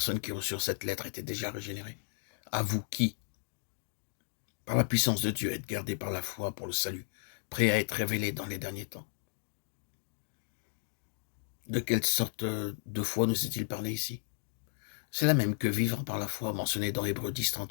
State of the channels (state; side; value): silent; right; digital silence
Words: qui reçurent cette lettre étaient déjà régénérées. À vous qui, par la puissance de Dieu, êtes gardés par la foi pour le salut, prêts à être révélés dans les derniers temps. De quelle sorte de foi nous est-il parlé ici? C'est la même que vivre par la foi mentionnée dans Hébreux 10,